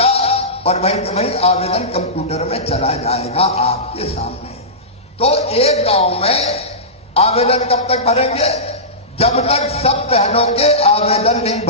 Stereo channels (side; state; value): both; normal; correlation -0.18